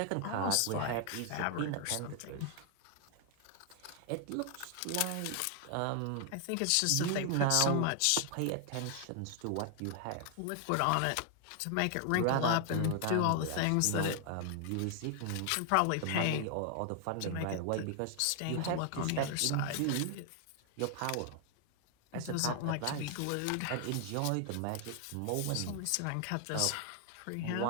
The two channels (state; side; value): different; both; correlation 0.00